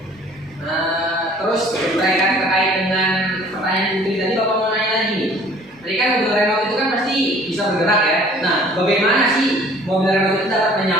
Terus berkaitan terkait dengan pertanyaan Putri tadi, Bapak mau nanya lagi nih. Tadi kan mobil remote itu kan pasti bisa bergerak ya? Nah, bagaimana sih mobil remote itu dapat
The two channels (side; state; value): both; normal; correlation 0.53